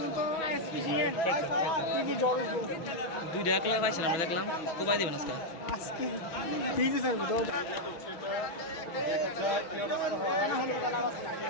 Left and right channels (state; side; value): late; right; 6.2 ms